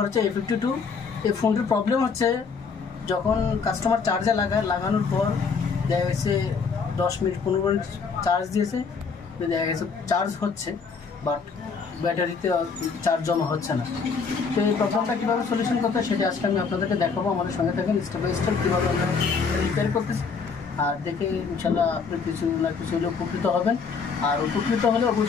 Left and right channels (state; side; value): quieter; right; 5.3 dB